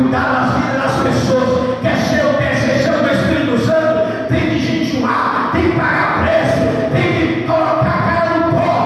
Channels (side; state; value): both; identical; correlation 1.00